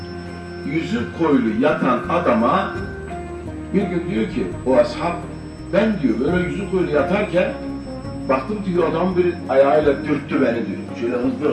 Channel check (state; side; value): identical; both; correlation 1.00